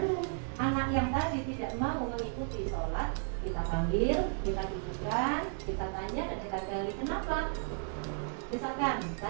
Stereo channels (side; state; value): left; silent; 55 dB below the other